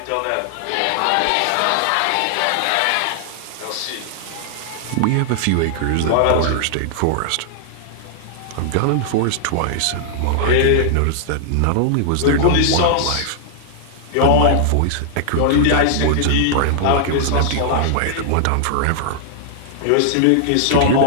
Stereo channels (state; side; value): different; both; correlation -0.01